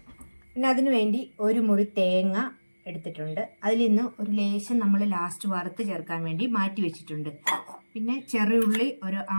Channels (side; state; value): both; inverted; correlation -1.00